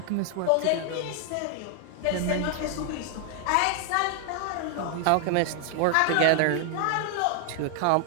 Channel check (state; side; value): different; both; correlation 0.00